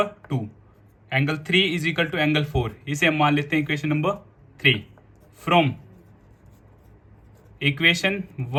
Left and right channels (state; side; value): identical; both; correlation 1.00